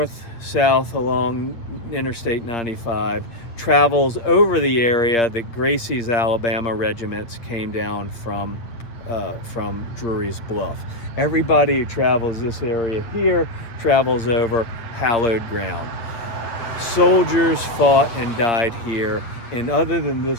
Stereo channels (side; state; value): right; late; 8.3 ms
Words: along Interstate 95 travels over the area that Gracie's Alabama regiments came down from Drury's Bluff. Everybody who travels this area here travels over hallowed ground. Soldiers fought and died here, and other than